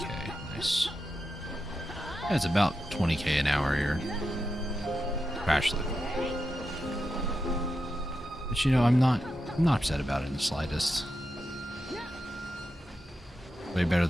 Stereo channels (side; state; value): both; normal; correlation 0.88